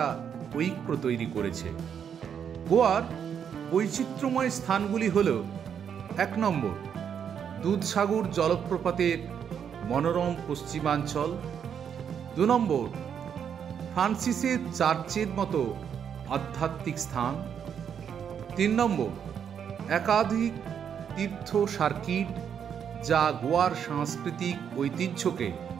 ঐক্য তৈরি করেছে। গোয়ার বৈচিত্র্যময় স্থানগুলি হল: 1 নম্বর, দুধসাগর জলপ্রপাতের মনোরম পশ্চিমাঞ্চল। 2 নম্বর, ফ্রান্সিসের চার্চের মতো আধ্যাত্মিক স্থান। 3 নম্বর, একাধিক তীর্থ সার্কিট যা গোয়ার সাংস্কৃতিক ঐতিহ্যকে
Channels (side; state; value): left; quieter; 8.0 dB